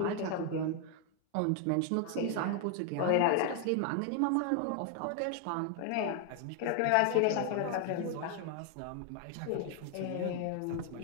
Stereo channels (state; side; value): different; both; correlation 0.00